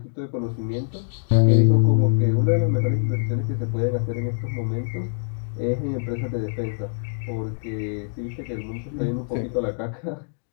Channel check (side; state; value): right; silent; digital silence